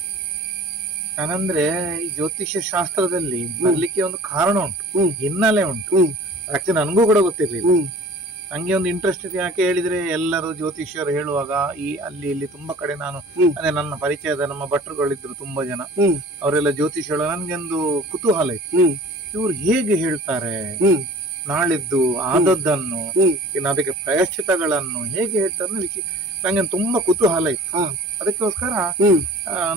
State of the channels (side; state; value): both; normal; correlation 0.46